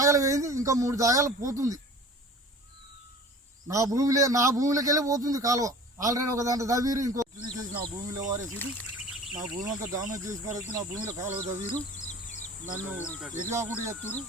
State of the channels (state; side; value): normal; both; correlation 0.42